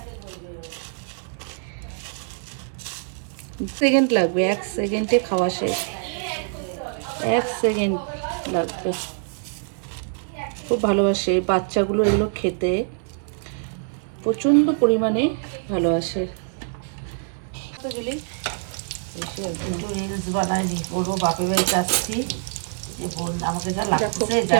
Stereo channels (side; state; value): left; silent; digital silence